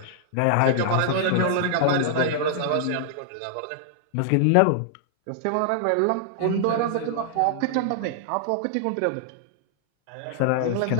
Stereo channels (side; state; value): both; different; correlation 0.00